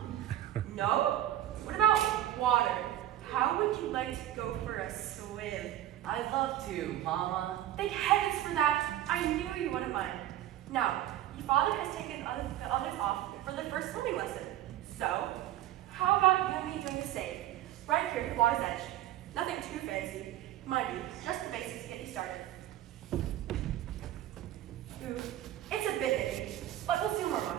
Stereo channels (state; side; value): quieter; left; 12.9 dB